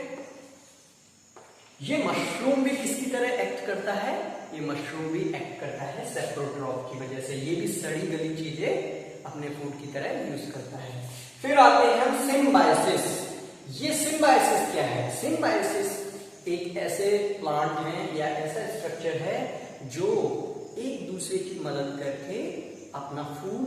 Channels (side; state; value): both; identical; correlation 1.00